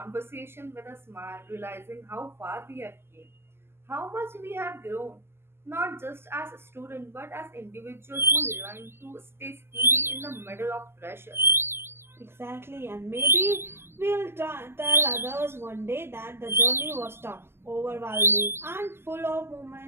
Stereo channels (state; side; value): late; left; 0.12 ms